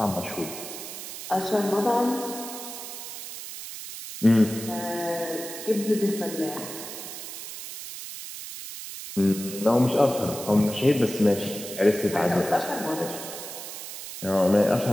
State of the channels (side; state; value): right; noise; hiss, 10 dB below the sound